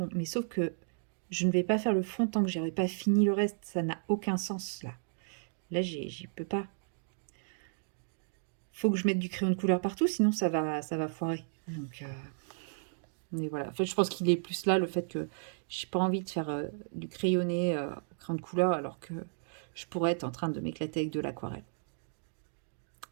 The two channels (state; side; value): silent; left; digital silence